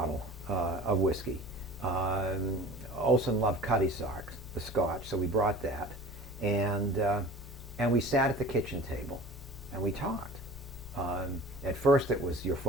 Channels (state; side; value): normal; both; correlation 0.41